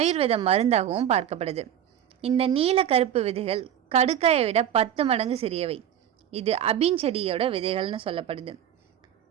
மருந்தாகவும் பார்க்கப்படுது. இந்த நீல கருப்பு விதைகள் கடுக்காயை விட 10 மடங்கு சிறியவை. இது அபின் செடியோட விதைகள்னு சொல்லப்படுது.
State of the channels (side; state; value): left; quieter; 10.2 dB